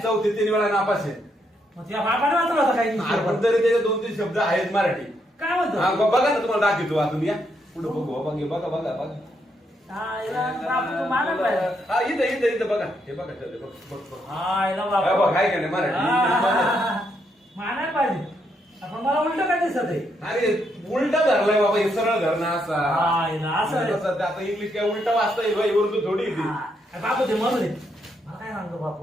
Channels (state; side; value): normal; both; correlation 0.77